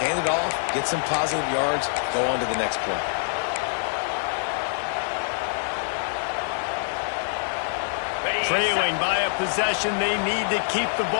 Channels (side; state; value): right; silent; 62 dB below the other